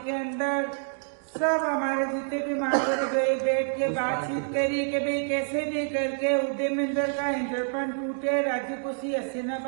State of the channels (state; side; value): silent; left; digital silence